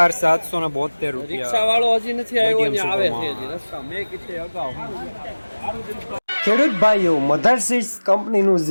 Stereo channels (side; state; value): both; inverted; correlation -1.00